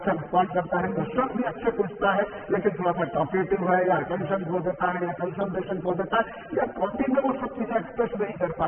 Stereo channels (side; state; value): both; identical; correlation 1.00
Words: रिस्पॉन्ड करता है, क्वेश्चन भी अच्छे पूछता है, लेकिन थोड़ा सा टॉकेटिव है या अटेंशन खो देता है या कंसंट्रेशन खो देता है या कॉन्टिंग में वो सब चीजें एक्सप्रेस नहीं कर